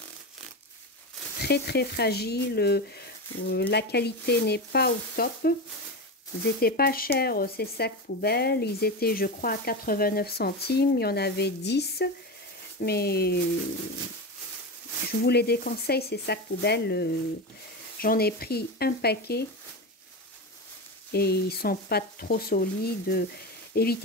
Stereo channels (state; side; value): normal; both; correlation 0.20